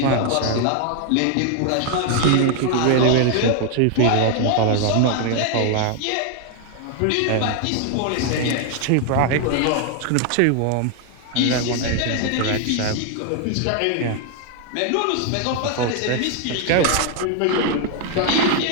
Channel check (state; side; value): different; both; correlation 0.00